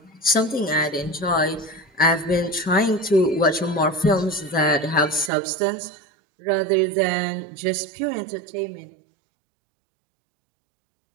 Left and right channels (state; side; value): drops out; left; at 5.3 s